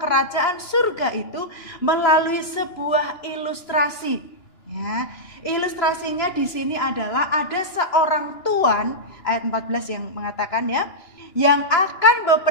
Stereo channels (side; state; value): right; late; 2.9 ms